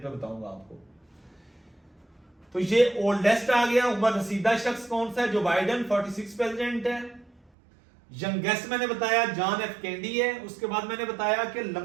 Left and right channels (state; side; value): drops out; left; at 7.5 s